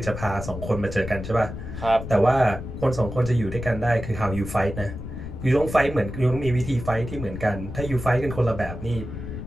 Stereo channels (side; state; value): left; noise; rumble, 9 dB below the sound